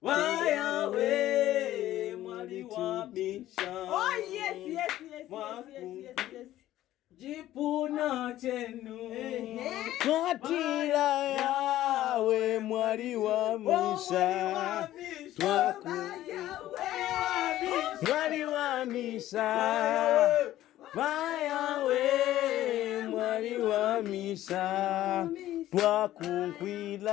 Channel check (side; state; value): right; quieter; 14.0 dB